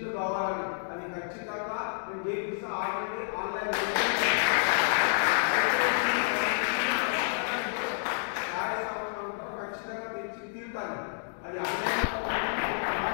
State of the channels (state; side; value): silent; right; digital silence